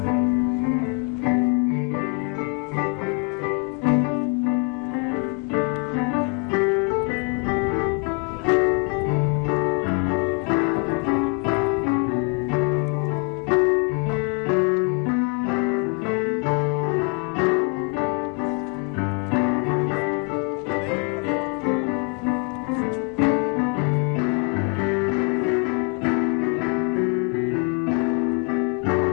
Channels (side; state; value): right; quieter; 34.2 dB